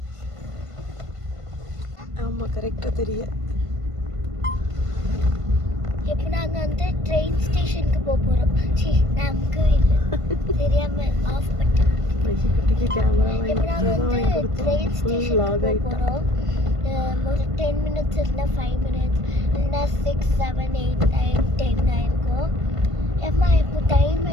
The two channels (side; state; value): left; late; 1.5 ms